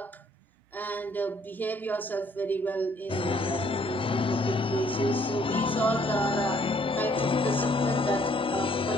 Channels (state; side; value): normal; both; correlation 0.65